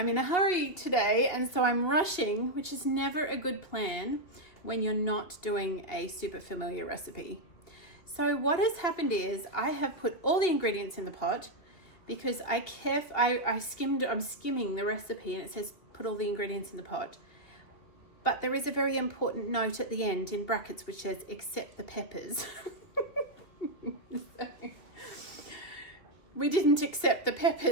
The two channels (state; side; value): late; right; 2.7 ms